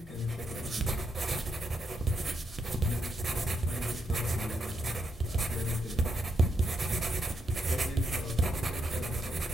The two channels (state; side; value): normal; both; correlation 0.80